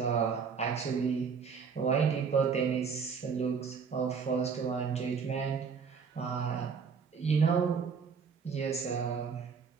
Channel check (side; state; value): left; quieter; 6.0 dB